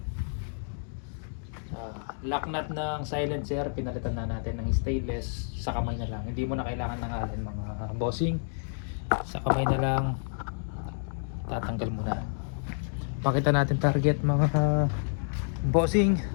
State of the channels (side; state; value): right; silent; digital silence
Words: Lock nut ng silencer, pinalitan na natin ng stainless. Sa kamay na lang. Hindi mo na kailangan ng allen mga bossing. Sa kamay na lang tatanggal muna. Pakita natin target mga bossing.